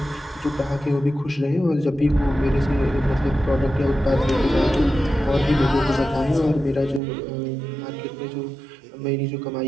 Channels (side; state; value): left; drops out; at 7.0 s